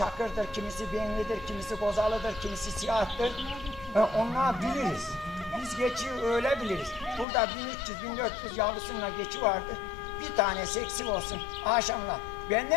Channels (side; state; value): right; drops out; at 7.2 s